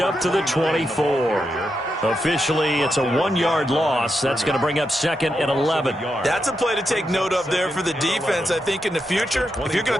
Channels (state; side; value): normal; both; correlation 0.85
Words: to the 24. Officially, it's a 1-yard loss. That's going to bring up 2nd and 11. That's a play to take note of there for the defense, I think, in the future. If you're going